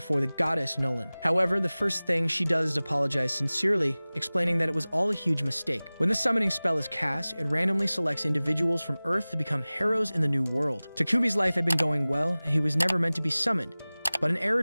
the goddess Nolan. However, the first thing she does is apologize sincerely, explaining that it was all a huge mistake. When the summoning spell is cast, it randomly selects individuals from Earth to become heroes in the new world. Takumi's life had been going well, and he was never meant to be summoned, but an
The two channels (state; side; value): inverted; both; correlation -0.99